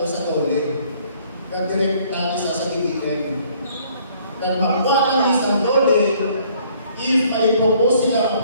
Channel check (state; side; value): inverted; both; correlation -0.60